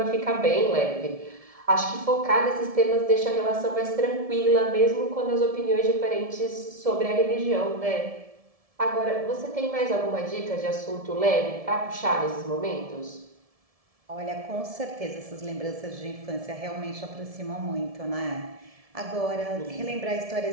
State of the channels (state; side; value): late; left; 1.7 ms